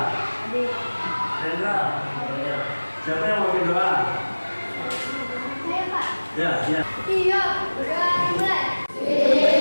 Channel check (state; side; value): inverted; both; correlation -1.00